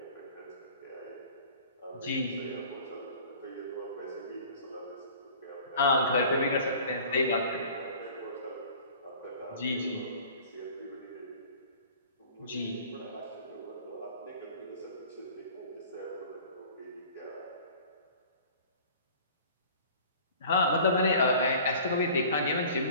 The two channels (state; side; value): inverted; both; correlation -0.46